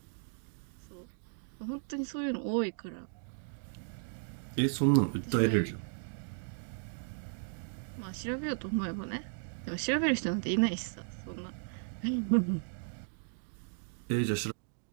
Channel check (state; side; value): silent; left; digital silence